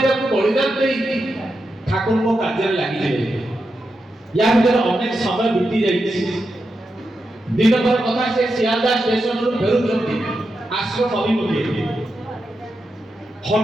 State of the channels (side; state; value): both; normal; correlation 0.87